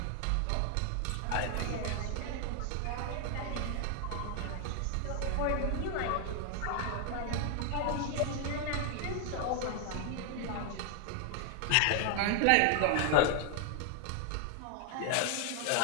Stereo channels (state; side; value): different; both; correlation 0.00